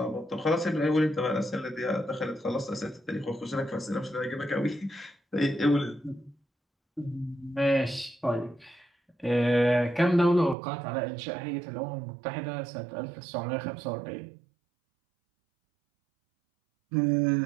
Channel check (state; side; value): drops out; left; at 10.6 s